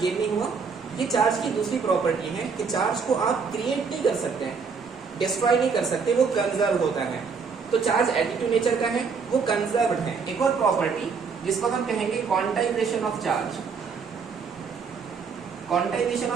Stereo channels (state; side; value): quieter; left; 5.5 dB